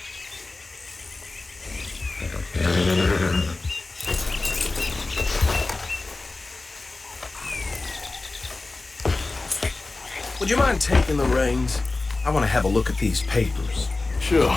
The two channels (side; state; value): right; quieter; 3.4 dB